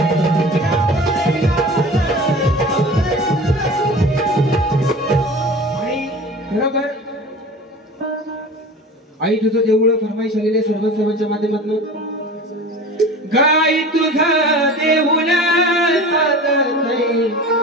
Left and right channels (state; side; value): normal; both; correlation 0.37